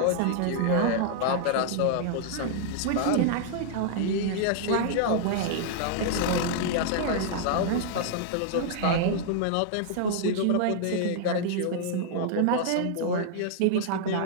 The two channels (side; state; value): both; different; correlation -0.01